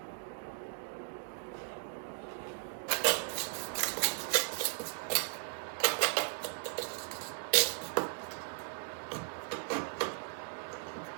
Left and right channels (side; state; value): left; silent; digital silence